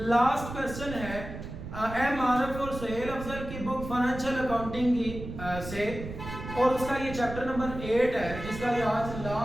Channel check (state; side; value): noise; right; rumble, 9 dB below the sound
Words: लास्ट क्वेश्चन है एम आरफ और सुहेल अफजल की बुक फाइनेंशियल अकाउंटिंग की से, और उसका ये चैप्टर नंबर 8 है, जिसका ये आज